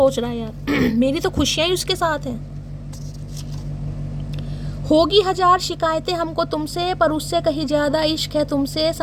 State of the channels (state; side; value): identical; both; correlation 1.00